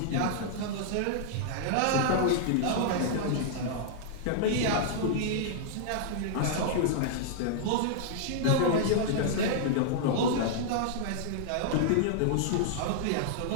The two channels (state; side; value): different; both; correlation -0.01